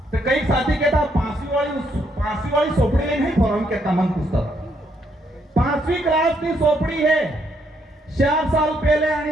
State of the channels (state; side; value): normal; both; correlation 0.74